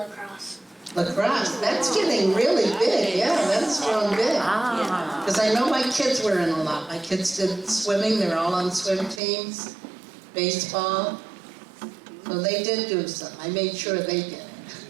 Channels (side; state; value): left; drops out; at 9.2 s